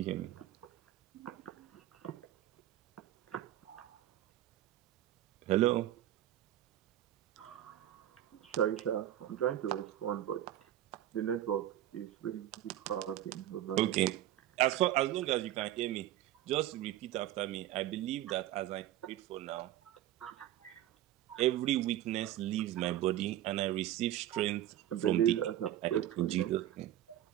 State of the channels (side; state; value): left; quieter; 12.9 dB